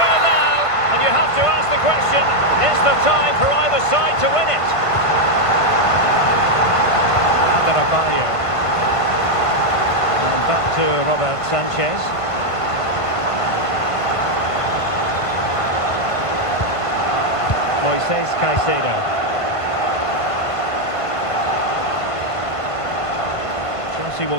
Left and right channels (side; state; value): right; late; 1.5 ms